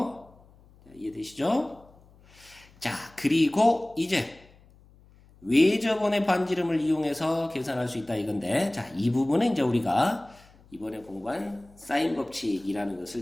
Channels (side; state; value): left; noise; hum, 27 dB below the sound